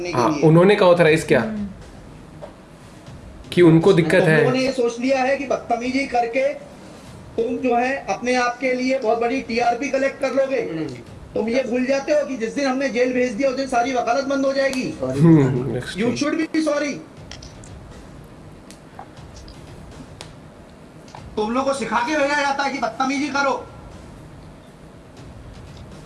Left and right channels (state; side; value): identical; both; correlation 1.00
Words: के हाँ, लिए? उन्होंने कहा ऑथराइज किया कि उनको दिक्कत है। उन्होंने ये सोच लिया है कि बदतमीजी करके तुम जो है अपने आप के लिए बहुत बड़ी टीआरपी कलेक्ट कर लोगे। तुम ये भूल जाते हो कि जिस दिन हमने जेल भेज दिया उस दिन सारी वकालत बंद हो जाएगी। You should be sorry. तुम लोग को सिखा के भेजा जाता है कि बदतमीजी करो।